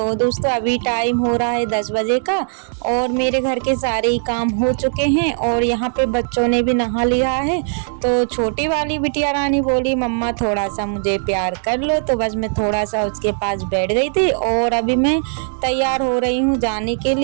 दोस्तों, अभी टाइम हो रहा है 10 बजे का और मेरे घर के सारे ही काम हो चुके हैं और यहाँ पे बच्चों ने भी नहा लिया है। तो छोटी वाली बिटिया रानी बोली, मम्मा थोड़ा सा मुझे प्यार कर लो। तो बस मैं थोड़ा सा उसके पास बैठ गई थी और अभी मैं तैयार हो रही हूँ जाने के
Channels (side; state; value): left; silent; 59 dB below the other